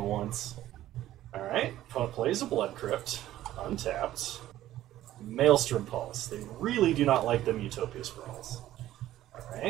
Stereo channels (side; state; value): left; quieter; 13.8 dB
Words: once. Alright, opponent plays a Blood Crypt, untapped. Maelstrom Pulse. They really do not like them Utopia Sprawls.